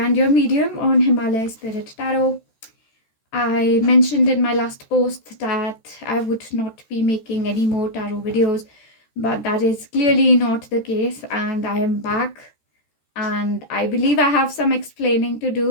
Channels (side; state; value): right; late; 14 ms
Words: and your medium on Himalaya Spirit Tarot. I mentioned in my last post that I would not be making any more tarot videos, but that is clearly not the case, and I am back. And I believe I have some explaining to